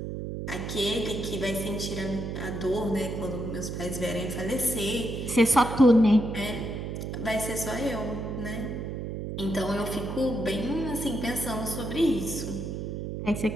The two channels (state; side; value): noise; right; hum, 5 dB below the sound